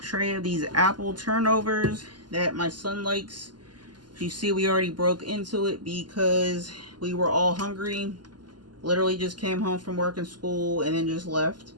of these apple turnovers that my son likes. You see, we already broke into it because we were all hungry. Literally just came home from work and school and then just left.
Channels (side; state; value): left; late; 0.71 ms